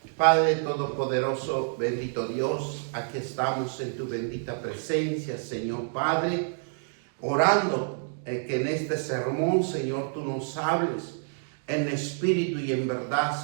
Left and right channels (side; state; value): left; silent; digital silence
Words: Padre Todopoderoso, bendito Dios, aquí estamos en tu bendita presencia, Señor Padre, orando que en este sermón, Señor, tú nos hables en espíritu y en verdad,